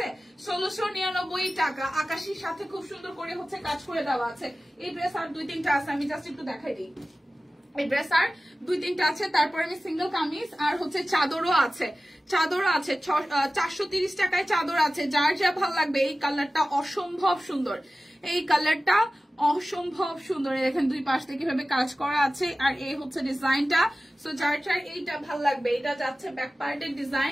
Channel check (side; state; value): both; normal; correlation 0.95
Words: 1699 টাকা, আকাশির সাথে খুব সুন্দর করে হচ্ছে কাজ করে দেওয়া আছে। এই ড্রেস আর 2-3টা আছে, আমি জাস্ট একটু দেখাই দিই। এই ড্রেস আর 2-3টা আছে। তারপরে আমি সিঙ্গেল কামিজ আর হচ্ছে চাদরও আছে, 430 টাকায় চাদর আছে। যার যা ভালো লাগবে। এই কালারটা অসম্ভব সুন্দর, এই কালারটা অসম্ভব সুন্দর। দেখেন দুই পাশ থেকে কিভাবে কাজ করা আছে, আর এই হচ্ছে ডিজাইনটা। সো যার যার এইটা ভালো লাগবে, এটা যাচ্ছে ব্যাক পার্টের